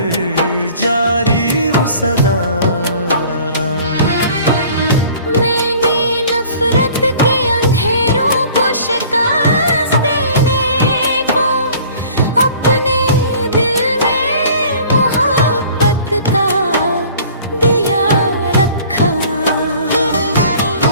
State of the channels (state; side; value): inverted; both; correlation -0.49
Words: जारी वो सदा। मैंने नफरत के अंधेरों को शिकस्त देने को अपने दिल में मोहब्बत का दिया रखा।